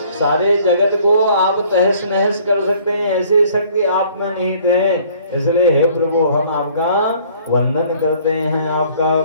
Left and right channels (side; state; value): both; inverted; correlation -0.57